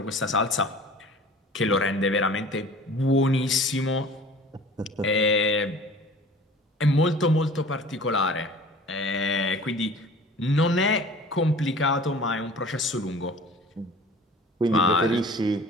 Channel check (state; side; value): normal; both; correlation 0.45